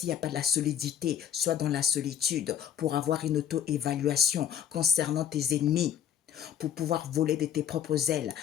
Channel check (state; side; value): quieter; right; 9.4 dB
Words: n'y a pas de la solidité, sois dans la solitude pour avoir une auto-évaluation concernant tes ennemis, pour pouvoir voler de tes propres ailes